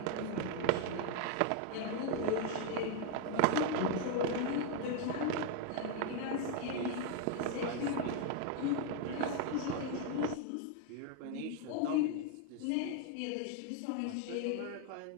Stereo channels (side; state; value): both; different; correlation 0.01